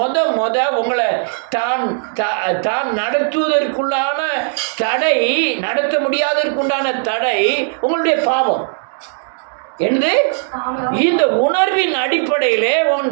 உங்களை தான் நடத்துவதற்குள்ளான தடை, நடத்த முடியாததற்குண்டான தடை உங்களுடைய பாவம். என்று இந்த உணர்வின் அடிப்படையிலே உன்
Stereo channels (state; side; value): silent; left; 66 dB below the other